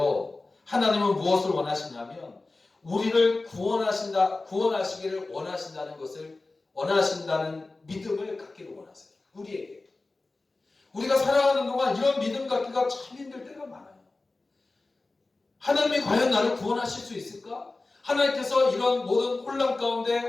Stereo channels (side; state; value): right; quieter; 3.3 dB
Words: 하나님은 무엇을 원하시냐면 우리를 구원하시기를 원하신다는 것을 원하신다는 믿음을 갖기를 원하세요. 우리에게. 우리가 살아가는 동안 이런 믿음 갖기가 참 힘들 때가 많아요. 하나님이 과연 나를 구원하실 수 있을까? 하나님께서 이런 모든 혼란 가운데,